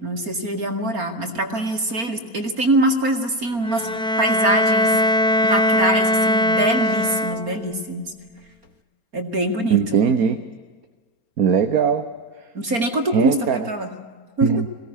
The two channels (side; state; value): left; late; 4.3 ms